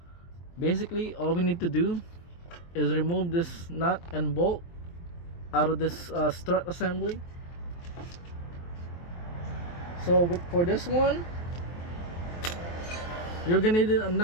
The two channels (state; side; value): late; right; 23 ms